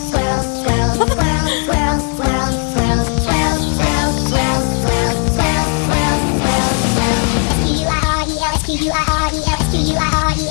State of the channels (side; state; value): right; quieter; 38.2 dB